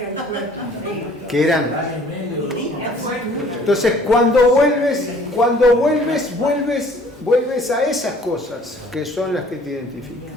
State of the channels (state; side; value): normal; both; correlation 0.55